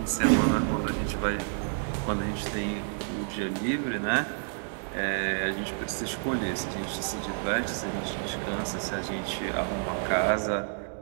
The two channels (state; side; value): silent; left; digital silence